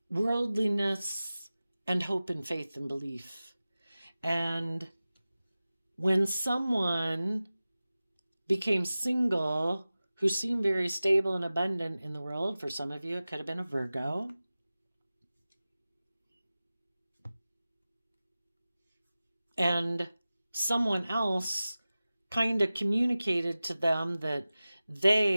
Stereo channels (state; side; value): inverted; both; correlation -0.96